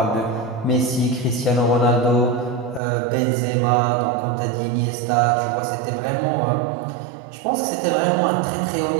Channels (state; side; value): drops out; left; at 2.8 s